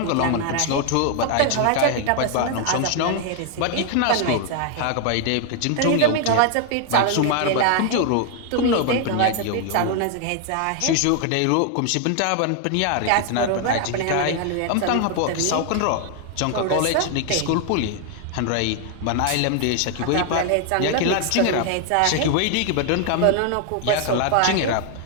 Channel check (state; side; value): different; both; correlation 0.00